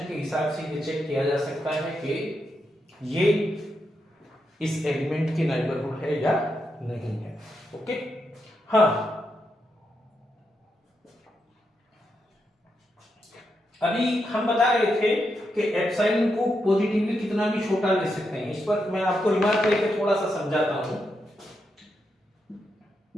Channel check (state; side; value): normal; both; correlation 0.83